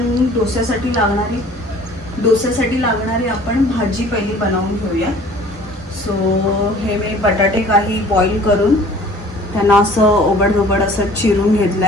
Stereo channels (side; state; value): both; normal; correlation 0.50